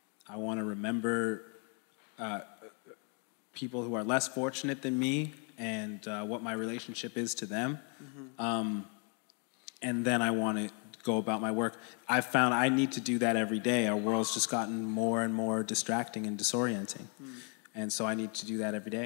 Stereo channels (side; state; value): right; quieter; 38.4 dB